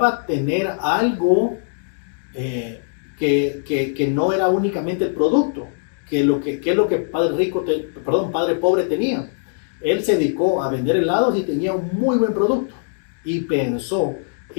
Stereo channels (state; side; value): silent; right; digital silence